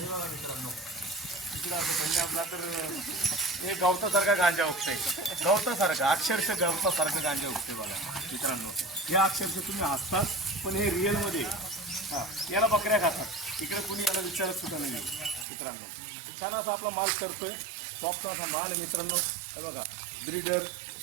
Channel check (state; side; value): drops out; left; at 15.5 s